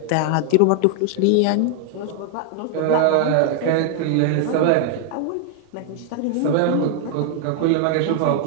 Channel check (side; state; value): both; different; correlation 0.00